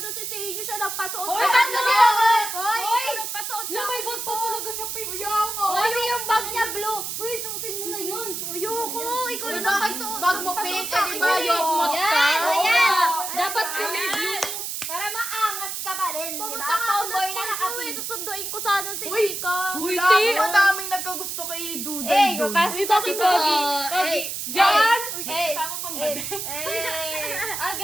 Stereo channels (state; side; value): noise; right; hiss, 5 dB below the sound